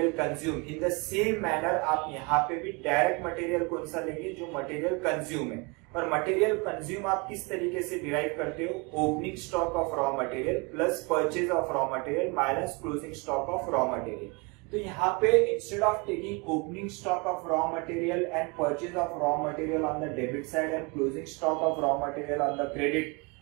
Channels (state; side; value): quieter; left; 29.4 dB